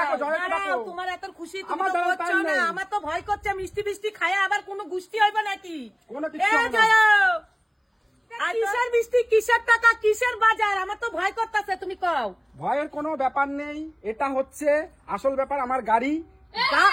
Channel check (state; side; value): identical; both; correlation 1.00